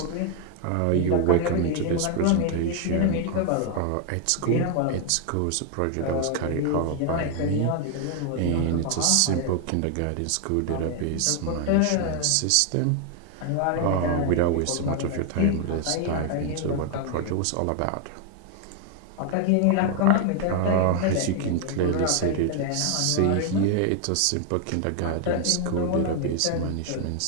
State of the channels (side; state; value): both; different; correlation 0.00